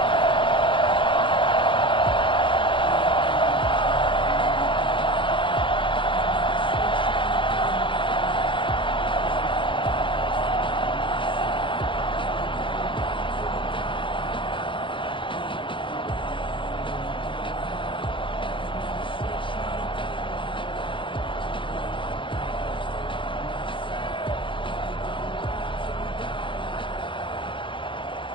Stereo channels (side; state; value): right; late; 0.24 ms